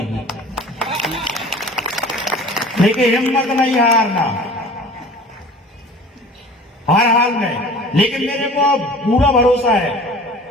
लेकिन हिम्मत नहीं हारना, हर हाल में। लेकिन मेरे को पूरा भरोसा है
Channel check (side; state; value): both; normal; correlation 0.44